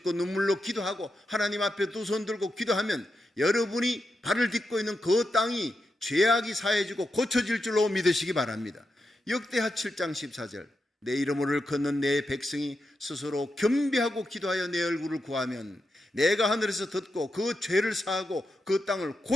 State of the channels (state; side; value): normal; both; correlation 0.87